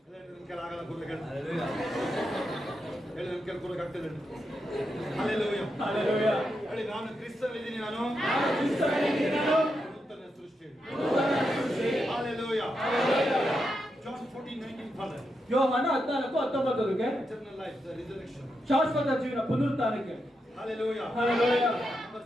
ನನ್ನ ಕೆಲ ಆಗಲ್ಲ ಕೂರ್ಲಿಕ್ಕೆ. ಹೇಳಿ, ನನ್ನ ಕೆಲ ಕೂರ್ಲಿಕ್ಕೆ ಆಗ್ತದೆ. Hallelujah. Hallelujah. ಹೇಳಿ, ನಾನು ಕ್ರಿಸ್ತನಲ್ಲಿದ್ದೀನಿ. ನಾನು ಕ್ರಿಸ್ತನಲ್ಲಿದ್ದೀನಿ. ನೂತನ ಸೃಷ್ಟಿ. Hallelujah. John 14:19 Father. ಯೋಹಾನ 14:19 Eternal life, the resurrection. ಶಾಶ್ವತ ಜೀವನ ಪುನರುತ್ಥಾನಕ್ಕೆ. Hallelujah. Hallelujah. Number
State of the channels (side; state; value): both; normal; correlation 0.85